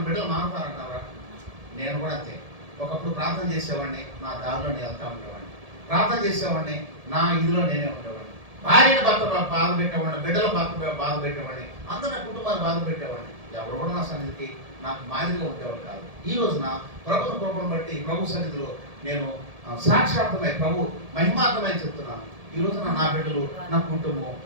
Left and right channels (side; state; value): left; late; 1.7 ms